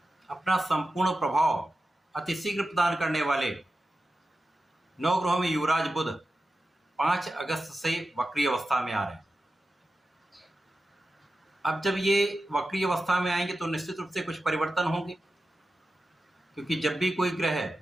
अपना संपूर्ण प्रभाव अतिशीघ्र प्रदान करने वाले नवग्रहों में युवराज बुध 5 अगस्त से वक्री अवस्था में आ रहे हैं। अब जब ये वक्री अवस्था में आएंगे तो निश्चित रूप से कुछ परिवर्तन होंगे, क्योंकि जब भी कोई ग्रह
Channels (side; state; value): both; normal; correlation 0.93